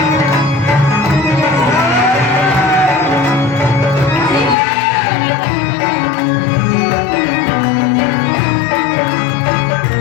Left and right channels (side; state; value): right; drops out; at 4.5 s